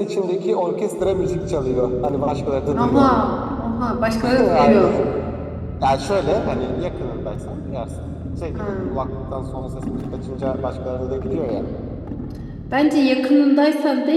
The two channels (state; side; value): identical; both; correlation 1.00